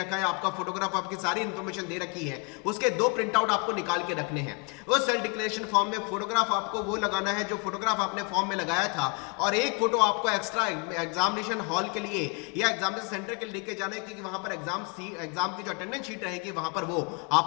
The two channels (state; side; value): quieter; right; 32.5 dB